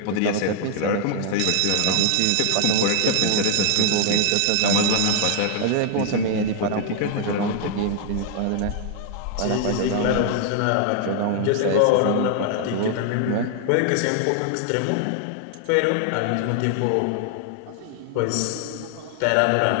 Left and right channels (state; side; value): different; both; correlation 0.00